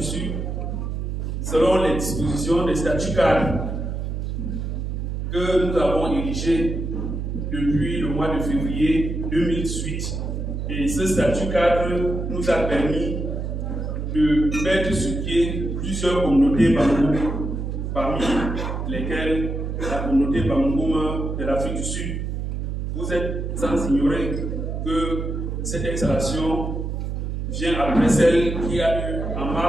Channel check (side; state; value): right; noise; hum, 3 dB below the sound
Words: Sud selon les dispositions des statuts cadres que nous avons érigés depuis le mois de février 2018. Et ce statut cadre nous a permis de mettre sur pied plusieurs communautés Bamungún, parmi lesquelles la communauté Bamungún de l'Afrique du Sud. Vous êtes sans ignorer que cette installation vient après celle qui a eu en